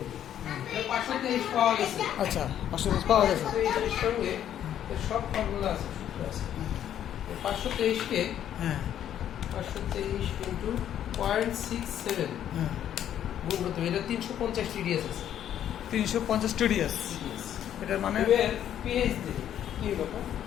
এটা 523 পাওয়া গেছে আচ্ছা 523 পাওয়া গেছে। 523 এর সঙ্গে এর সব ফর্মুলা আছে সূত্র আছে 523 কে হ্যাঁ 523 ইনটু 0.67 হ্যাঁ গুণ করতে হবে। এটা 350 টিডিএস আছে 350 টিডিএস। এটার মানে এবার পিএইচ দিই কি ব্যাপার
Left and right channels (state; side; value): quieter; right; 10.5 dB